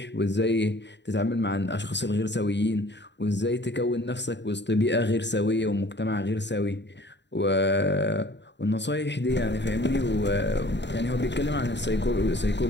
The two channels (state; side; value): late; right; 0.51 ms